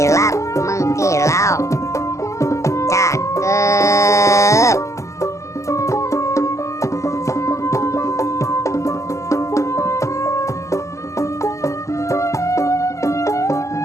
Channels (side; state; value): right; late; 0.15 ms